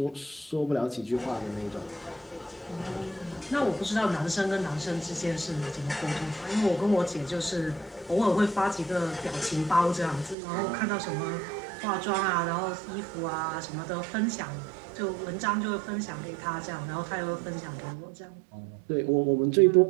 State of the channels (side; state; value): left; drops out; at 10.4 s